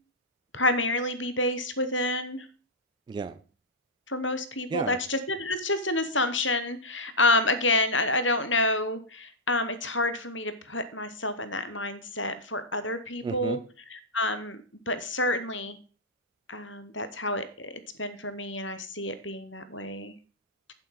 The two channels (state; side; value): normal; both; correlation -0.09